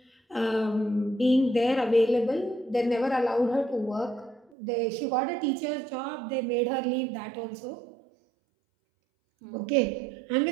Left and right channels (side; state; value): left; drops out; at 4.5 s